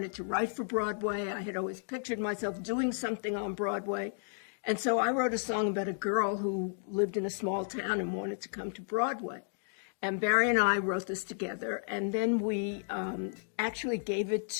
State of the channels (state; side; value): silent; right; digital silence